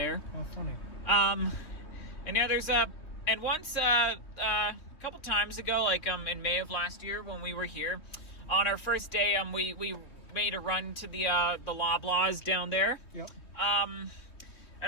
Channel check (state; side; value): late; right; 3.2 ms